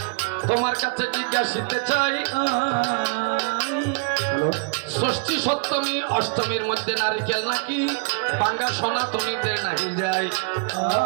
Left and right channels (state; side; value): quieter; left; 38.7 dB